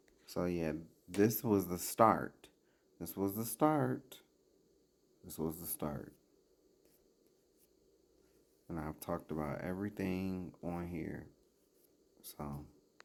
So yeah, this was the start. This was the start. This was the start. And I've talked about everything on here. So,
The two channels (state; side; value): identical; both; correlation 1.00